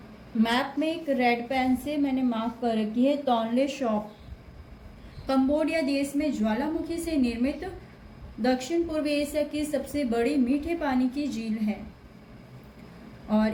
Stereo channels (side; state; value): both; identical; correlation 1.00